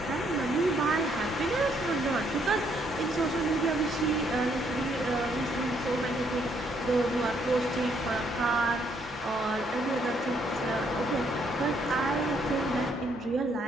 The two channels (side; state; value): both; normal; correlation 0.70